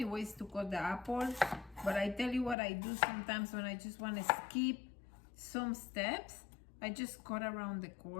ways to cut the apples, but I tell you what I do sometimes when I just want to skip some steps. I just cut around the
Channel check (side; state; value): right; drops out; at 2.6 s